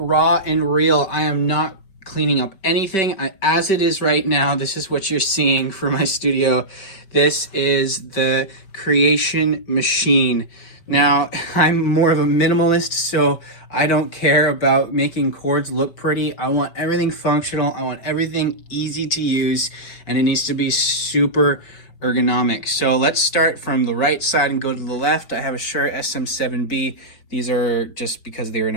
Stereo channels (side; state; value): right; late; 5.2 ms